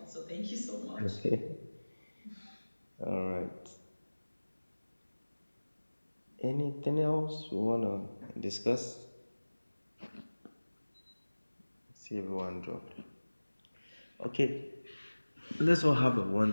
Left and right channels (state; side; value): inverted; both; correlation -1.00